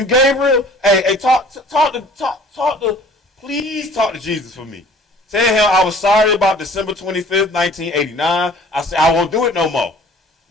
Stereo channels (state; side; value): normal; both; correlation 0.51